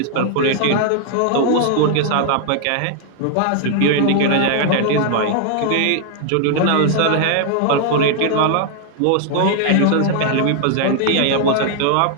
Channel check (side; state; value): both; different; correlation 0.00